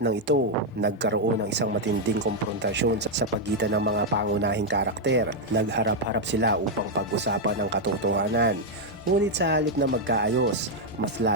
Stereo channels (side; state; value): both; normal; correlation 0.00